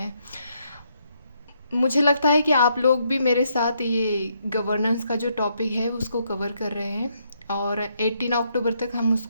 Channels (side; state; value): both; inverted; correlation -0.75